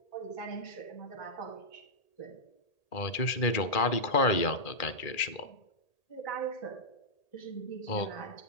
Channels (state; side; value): late; right; 1.8 ms